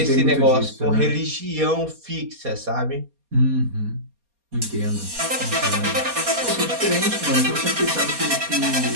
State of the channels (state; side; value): late; left; 4.2 ms